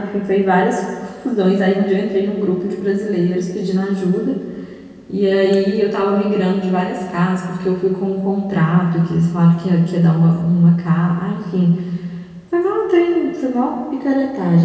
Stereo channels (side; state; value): both; identical; correlation 1.00